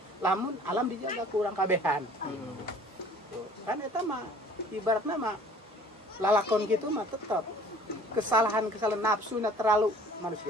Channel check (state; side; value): normal; both; correlation 0.51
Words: Lamun alam dijaga kurang kabehan. Kan eta mah ibaratna mah lalakon gitu mah tetap kesalahan-kesalahan nafsu terlalu